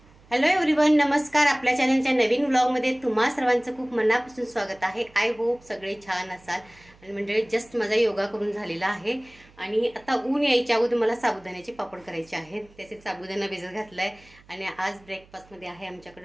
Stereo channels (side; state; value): right; noise; hum, 27 dB below the sound